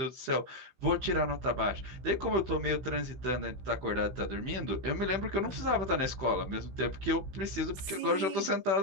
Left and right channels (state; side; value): late; left; 16 ms